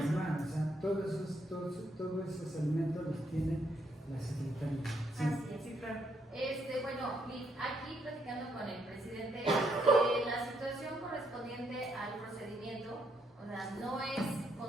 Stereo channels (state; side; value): normal; both; correlation 0.75